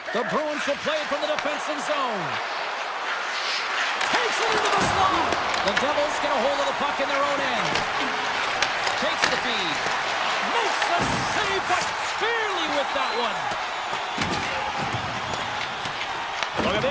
The Bruins will play it from the defensive zone. Takes it into the slot. The Devils get a hold of the puck in their own end. Takes the feed. Makes the save, but barely with that one. Look at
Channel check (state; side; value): identical; both; correlation 1.00